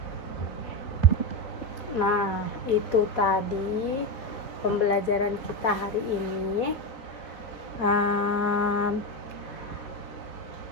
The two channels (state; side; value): late; right; 4.1 ms